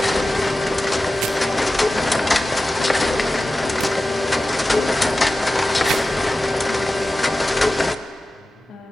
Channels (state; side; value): normal; both; correlation 0.95